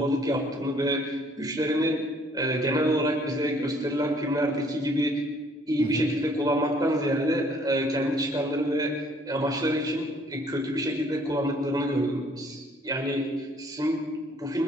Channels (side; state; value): both; normal; correlation 0.61